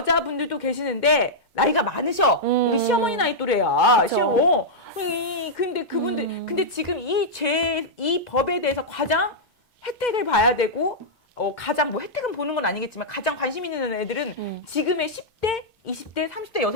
계시는데 나이가 많으셔. 우리 시어머니 나이 또래야. 그렇죠. 근데 그분들, 근데 지금 이 법에 대해서 가장 혜택을 봐야 되고, 가장 뭐 혜택은 보는 건 아니겠지만 가장 관심 있는 애들은 지금의 10대, 20대, 30대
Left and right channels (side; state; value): both; normal; correlation -0.08